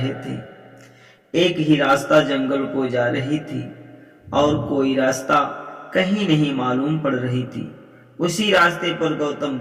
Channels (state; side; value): identical; both; correlation 1.00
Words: थे। एक ही रास्ता जंगल को जा रही थी और कोई रास्ता कहीं नहीं मालूम पड़ रही थी। उसी रास्ते पर गौतम